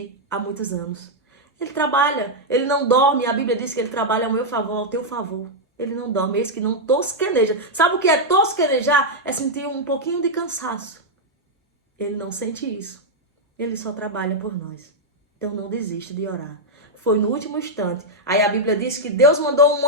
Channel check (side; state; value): both; normal; correlation -0.02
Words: há muitos anos. Ele trabalha, ele não dorme. A Bíblia diz que ele trabalha ao meu favor, ao teu favor. Ele não dorme, é isso que não tosqueneja. Sabe o que é tosquenejar? É sentir um pouquinho de cansaço. Ele não sente isso. Ele só trabalha por nós. Então não desiste de orar. Foi no último instante. Aí a Bíblia diz que Deus mandou um